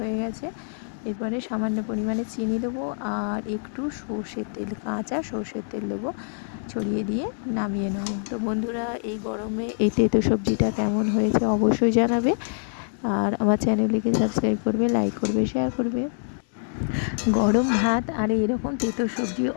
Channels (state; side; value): silent; right; 62 dB below the other